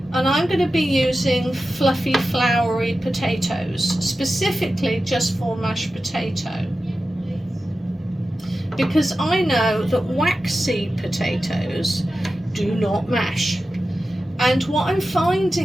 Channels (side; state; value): both; normal; correlation 0.93